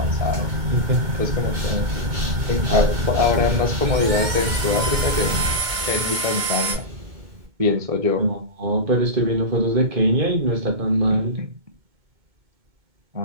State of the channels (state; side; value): late; left; 2.2 ms